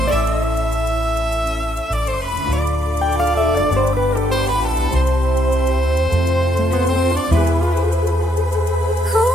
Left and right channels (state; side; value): normal; both; correlation 0.74